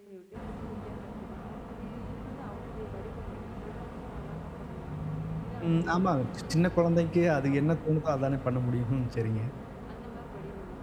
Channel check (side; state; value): both; identical; correlation 1.00